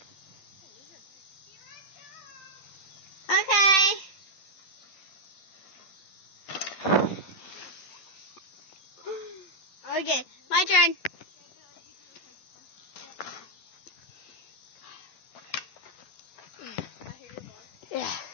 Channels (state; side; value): late; right; 10 ms